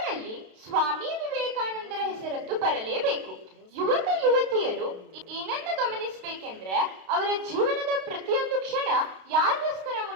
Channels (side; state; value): left; late; 32 ms